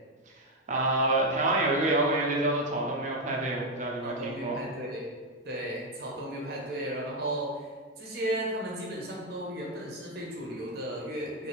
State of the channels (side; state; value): both; normal; correlation 0.05